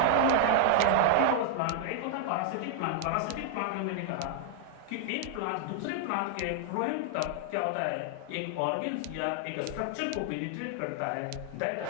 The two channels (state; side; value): different; both; correlation 0.00